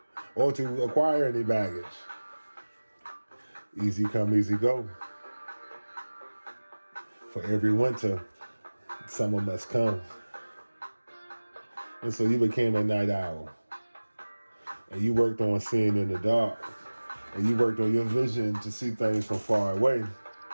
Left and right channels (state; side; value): inverted; both; correlation -1.00